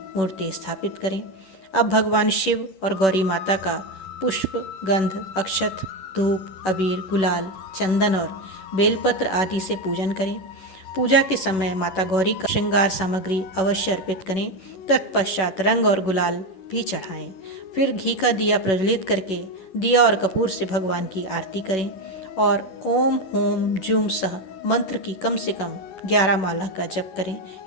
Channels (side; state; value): right; late; 11 ms